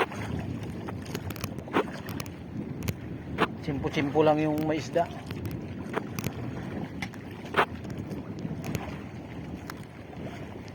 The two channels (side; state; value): both; identical; correlation 1.00